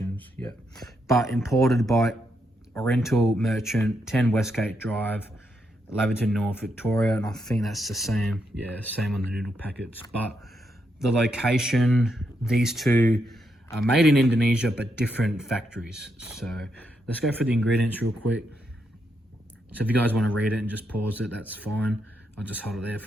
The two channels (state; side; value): normal; both; correlation 0.80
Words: yeah. But imported by Oriental Merchant, 10 Westgate Drive, Laverton North, Victoria, and I think that's the same, yeah, same on the noodle packets. But the location, these two are made in Indonesia, but different factories. So let's go through the ingredients real quick. So if you guys want to read it and just pause it, that's fine. I'll just hold it there